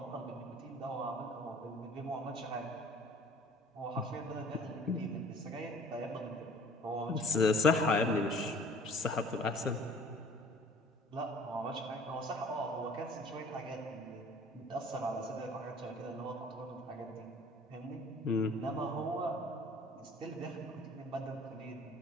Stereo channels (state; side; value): normal; both; correlation 0.51